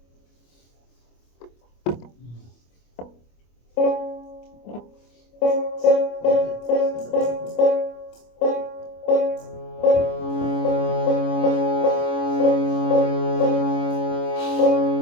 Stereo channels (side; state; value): right; late; 25 ms